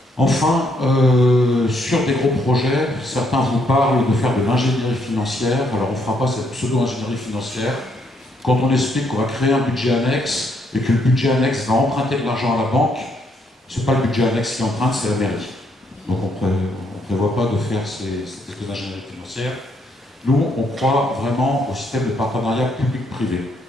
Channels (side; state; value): both; normal; correlation 0.73